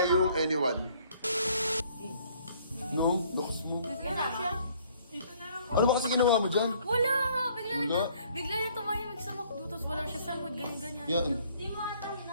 yung anyone. No? Looks mo. Yan na siya. Ano ba kasi ginawa mo dyan? Wala nga, Wala. bigla niya tumahimik sa McDo, tapos wala siya sa mood, ganyan-ganyan. Yan. Di mo ata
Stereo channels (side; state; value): both; inverted; correlation -0.61